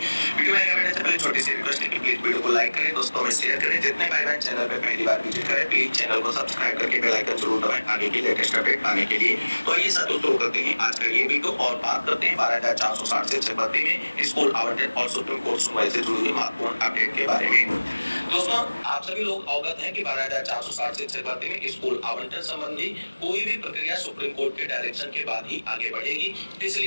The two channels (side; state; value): both; inverted; correlation -1.00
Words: वीडियो में आगे बढ़ने से पहले छोटी सी रिक्वेस्ट है कि प्लीज वीडियो को लाइक करें, दोस्तों में शेयर करें। जितने भाई बहन चैनल पे पहली बार विजिट करें प्लीज चैनल को सब्सक्राइब करके बेल आइकन जरूर दबाएं आगे की लेटेस्ट अपडेट पाने के लिए। तो आइए साथियों शुरू करते हैं आज का ये वीडियो और बात करते हैं 12,460 से 6 में स्कूल आवंटन और सुप्रीम कोर्ट सुनवाई से जुड़ी हुई महत्वपूर्ण अपडेट के बारे में। दोस्तों आप सभी लोग अवगत हैं कि 12,460 से 6 में स्कूल आवंटन संबंधी कोई भी प्रक्रिया सुप्रीम कोर्ट के डायरेक्शन के बाद ही आगे बढ़ेगी।